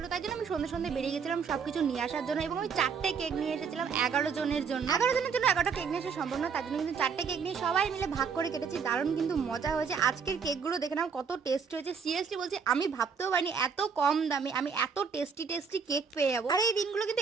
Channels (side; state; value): left; quieter; 6.0 dB